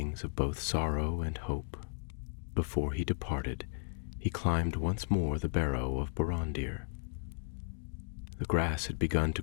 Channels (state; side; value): silent; right; digital silence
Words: of both sorrow and hope. Before he departed, he climbed once more the barrow of Borondir. The grass had begun to